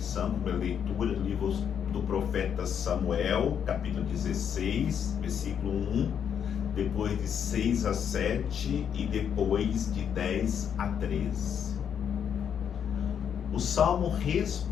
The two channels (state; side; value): quieter; right; 8.2 dB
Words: para leitura do livro do profeta Samuel, capítulo 16, versículo 1, depois de 6 a 7 e depois de 10 a 13. O salmo